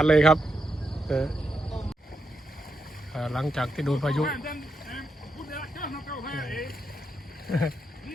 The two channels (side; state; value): both; normal; correlation 0.83